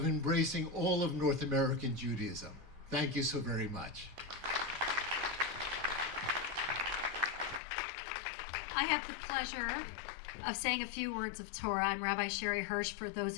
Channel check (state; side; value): drops out; right; at 7.6 s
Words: embracing all of North American Judaism. Thank you so very much. I have the pleasure of saying a few words of Torah. I'm Rabbi Sherre Hirsch, for those